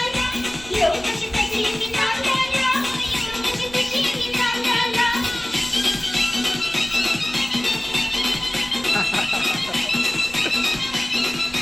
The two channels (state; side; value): noise; right; rumble, 20 dB below the sound